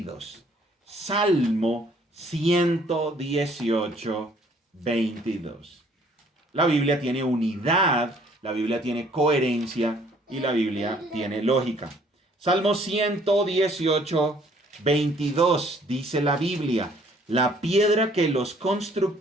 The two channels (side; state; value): both; normal; correlation 0.60